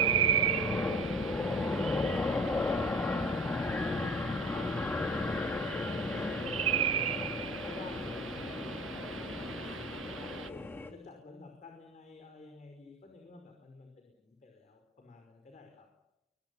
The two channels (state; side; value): normal; both; correlation 0.39